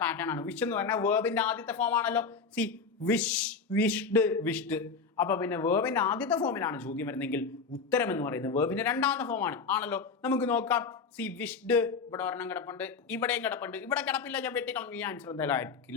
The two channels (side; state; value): right; quieter; 5.0 dB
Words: പാറ്റേൺ ആണ്. വിഷ് എന്ന് പറഞ്ഞാൽ വേർബിന്റെ ആദ്യത്തെ ഫോം ആണല്ലോ. Wish, wished, wished. അപ്പൊ പിന്നെ വേർബിന്റെ ആദ്യത്തെ ഫോമിലാണ് ചോദ്യം വരുന്നെങ്കിൽ ഉത്തരം എന്ന് പറയുന്നത് വേർബിന്റെ രണ്ടാമത്തെ ഫോമാണ് ആണല്ലോ. നമുക്ക് നോക്കാം. വിഷ്ഡ് ഇവിടെ ഒരെണ്ണം കിടപ്പുണ്ട്, ഇവിടെയും കിടപ്പുണ്ട്. ഇവിടെ കിടപ്പില്ല, ഞാൻ വെട്ടിക്കളഞ്ഞു. ഈ ആൻസർ എന്തായാലും